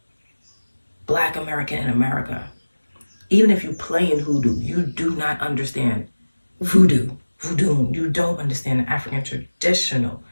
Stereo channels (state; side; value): inverted; both; correlation -1.00